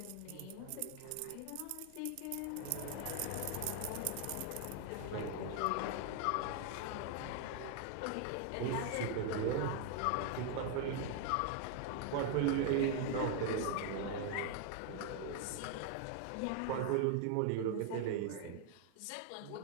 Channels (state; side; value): different; both; correlation 0.00